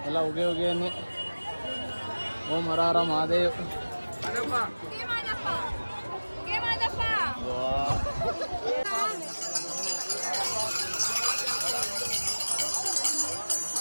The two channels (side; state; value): both; inverted; correlation -1.00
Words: ಎಲ್ಲ ಉಗೆ ಉಗೆ ಅನ್ನಿ. ಓಂ ಹರ ಹರ ಮಹಾದೇವ್.